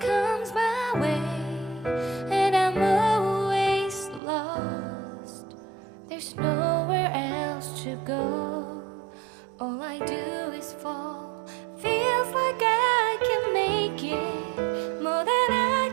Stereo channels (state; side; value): drops out; left; at 4.2 s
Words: comes my way, and I'm always lost. There's nowhere else to go. All I do is fall. Feels like I can make it more than